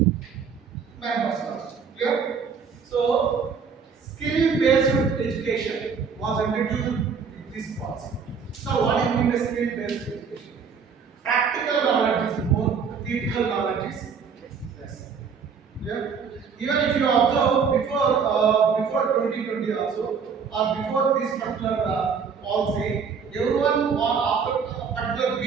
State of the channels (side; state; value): left; quieter; 6.1 dB